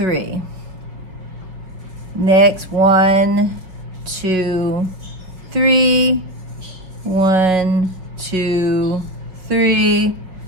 Next, 1, 2, 3, 1, 2, 3,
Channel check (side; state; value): left; late; 5.1 ms